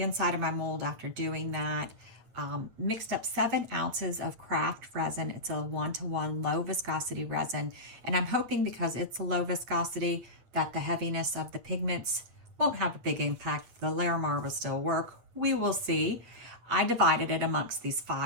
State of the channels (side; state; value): left; late; 8.6 ms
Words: of my mold after doing that. Mixed up 7 ounces of Craft Resin. It's a 1-to-1 low viscosity resin, and I'm hoping because it's a low viscosity that the heaviness of the pigments won't have a big impact. The Larimar will still work. We will see. I divided it amongst these